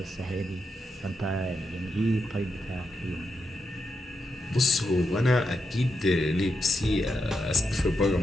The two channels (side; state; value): both; normal; correlation 0.85